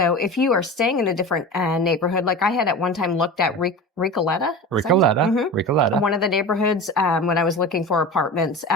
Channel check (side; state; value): both; normal; correlation 0.31